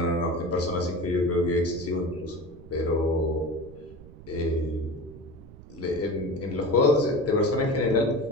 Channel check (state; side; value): noise; right; rumble, 18 dB below the sound